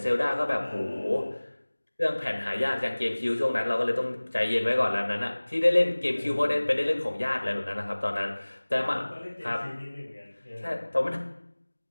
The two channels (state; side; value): inverted; both; correlation -1.00